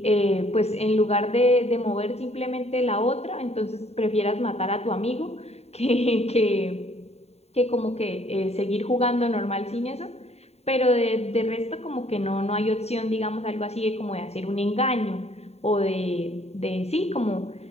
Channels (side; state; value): right; late; 0.30 ms